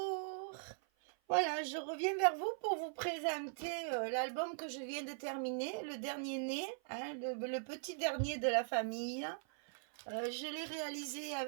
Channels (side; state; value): left; silent; 51 dB below the other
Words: Voilà, je reviens vers vous pour vous présenter l'album que je viens de terminer, le dernier né, hein, le petit dernier de la famille. Je l'ai réalisé